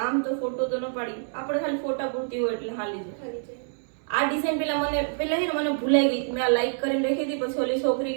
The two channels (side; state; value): left; silent; 60 dB below the other